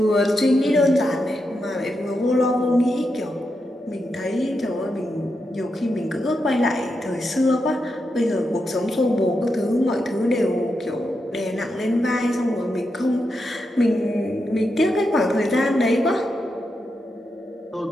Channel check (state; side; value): normal; both; correlation 0.85